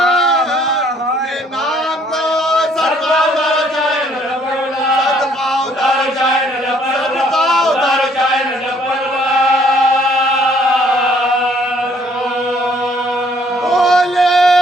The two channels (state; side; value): normal; both; correlation 0.63